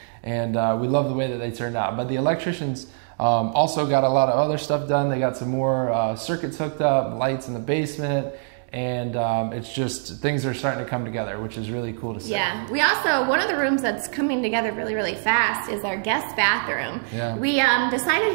and we love the way that they turned out. But the electricians also got a lot of other stuff done. They got some more circuits hooked up, lights in the basement, and it's just, things are starting to come together, which is really cool to see. Yeah, we also, one of the rooms that's coming together really, really fast is our guest bathroom. Yeah. We decided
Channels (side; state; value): left; silent; digital silence